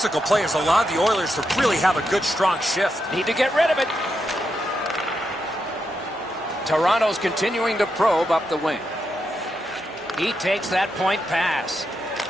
play has allowed the Oilers to really have a good, strong shift. Need to get rid of it. Toronto's continuing to probe up the wing. He takes that point pass.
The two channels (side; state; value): both; normal; correlation 0.84